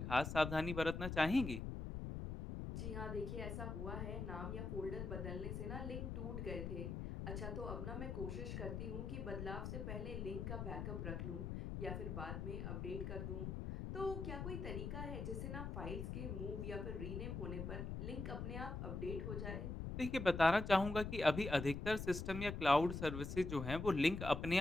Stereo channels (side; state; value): left; noise; rumble, 4 dB below the sound